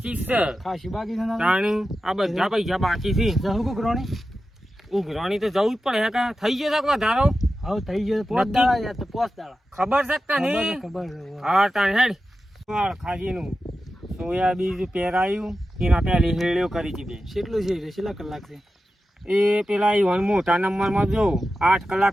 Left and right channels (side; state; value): both; normal; correlation 0.92